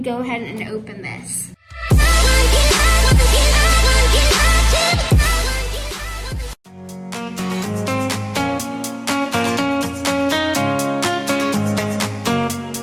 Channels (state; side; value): identical; both; correlation 1.00